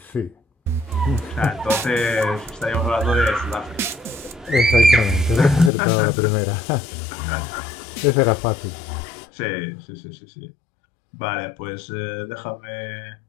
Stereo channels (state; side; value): drops out; right; at 5.7 s